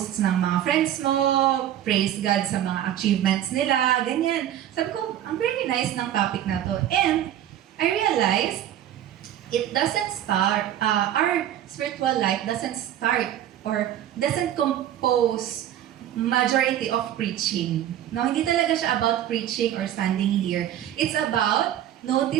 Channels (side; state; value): left; quieter; 11.5 dB